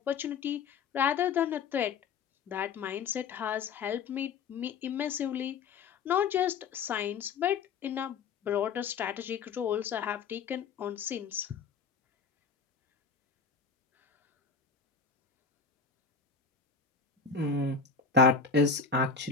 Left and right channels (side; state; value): right; quieter; 5.5 dB